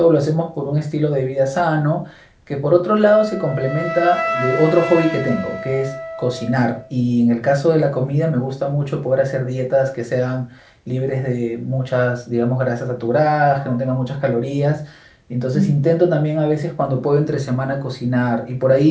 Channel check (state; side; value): identical; both; correlation 1.00